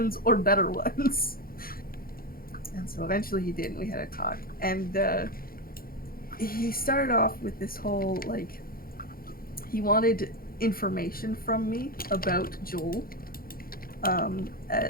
or better ones. And so eventually he did, and we had a talk. And he started off with this whole, like, he wanted information from me about Joel,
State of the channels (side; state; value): right; late; 0.42 ms